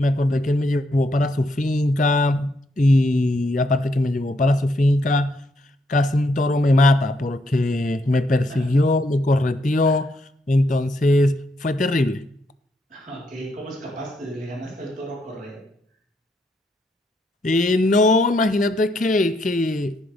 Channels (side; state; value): both; normal; correlation 0.76